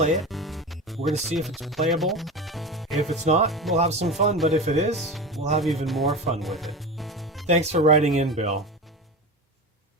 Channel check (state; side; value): normal; both; correlation 0.26